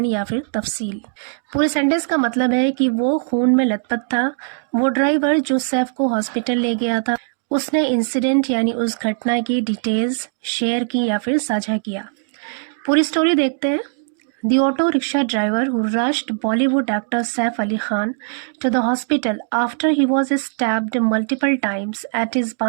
या फिर तफसील. पूरे सेंटेंस का मतलब है कि वो खून में लथपथ था. वो ड्राइवर जो सैफ को हॉस्पिटल ले गया था उसने इंसिडेंट यानी उस घटना की डिटेल्स शेयर की या फिर साझा किया. पूरी स्टोरी देखते हैं. The auto rickshaw driver who rushed Bollywood actor Saif Ali Khan to the hospital after he was stabbed multiple times at his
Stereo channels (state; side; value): silent; left; 66 dB below the other